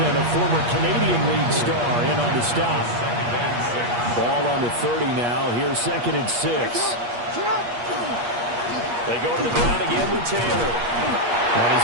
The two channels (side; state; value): left; late; 8.4 ms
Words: a former Canadian League star, in on the stop. Ball on the 30 now. Here's 2nd and 6. They go to the ground again with Taylor. And